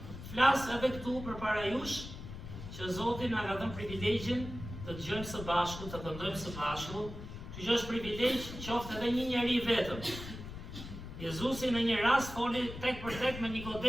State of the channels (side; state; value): left; noise; rumble, 10 dB below the sound